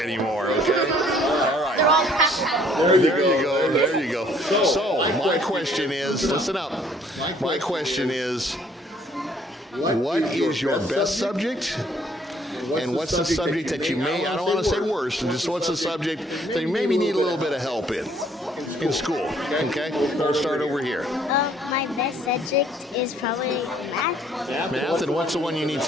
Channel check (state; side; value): normal; both; correlation 0.61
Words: anymore, okay? All right. They're all passionate. There you go. So, my question is, listen up. My question is, what is your best subject? And what's the subject that you may, I don't want to say worst, just what's the subject that you maybe need a little bit of help in school, okay? We'll start over here. My best subject is probably math. Math, and what's the one you need